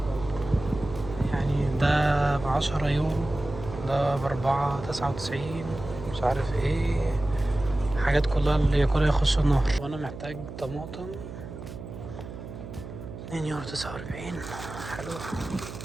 يعني ده ب10 يورو، ده ب4.99، مش عارف ايه، حاجات كلها اللي ياكلها يخش النار. وانا محتاج طماطم 2.49 يورو. حلو.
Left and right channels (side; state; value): right; noise; hum, 11 dB below the sound